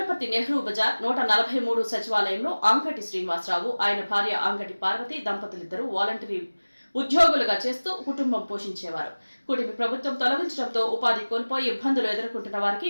నెహ్రూ బజార్ 143 సచివాలయంలో అంగటి శ్రీనివాసరావు, ఆయన భార్య అంగటి పార్వతి దంపతులిద్దరూ వాలంటరీ ఉద్యోగులుగా చేస్తూ కుటుంబం పోషించేవారు. కూటమి ప్రభుత్వం తొలగించడంతో ఉపాధి కోల్పోయి ఇబ్బందులు ఎదుర్కొంటున్న వారికి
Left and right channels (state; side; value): inverted; both; correlation -1.00